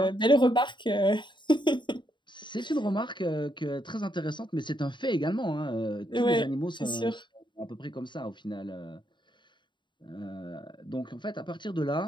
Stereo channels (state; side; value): late; right; 0.23 ms